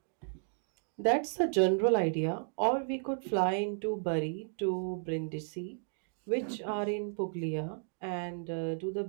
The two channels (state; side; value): silent; left; 55 dB below the other